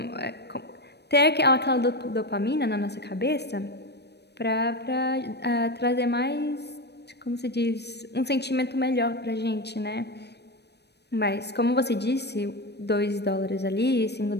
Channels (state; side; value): late; right; 0.49 ms